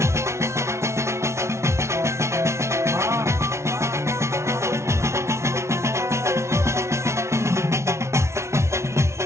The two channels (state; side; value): late; left; 0.13 ms